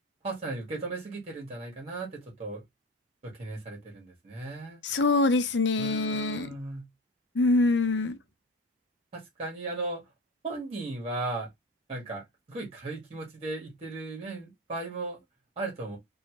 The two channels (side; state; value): both; normal; correlation 0.27